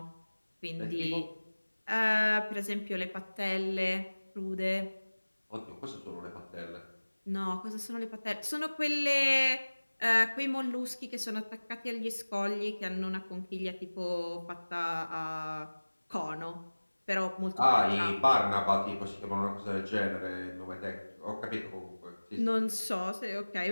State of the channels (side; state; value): both; inverted; correlation -1.00